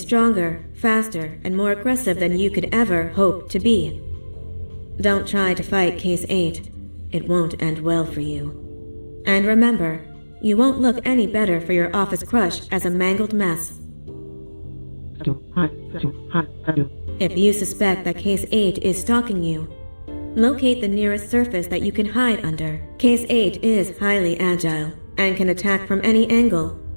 stronger, faster, and more aggressive than you could ever hope to be. Don't try to fight Case 8. It won't end well for you. And remember, you won't look any better for your office crush as a mangled mess. If you suspect that Case 8 is stalking you, locate the nearest surface that you can hide under. Case 8 is highly agile and can attack from any angle,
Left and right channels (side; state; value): both; inverted; correlation -1.00